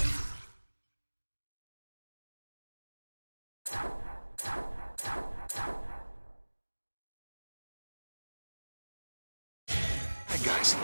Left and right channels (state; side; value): inverted; both; correlation -1.00